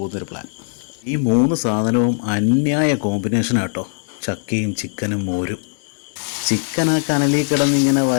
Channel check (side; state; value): right; silent; 66 dB below the other